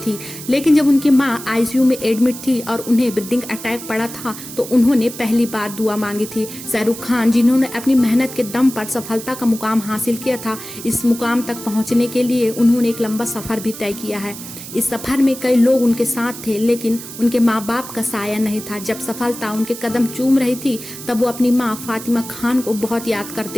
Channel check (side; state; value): right; noise; hiss, 12 dB below the sound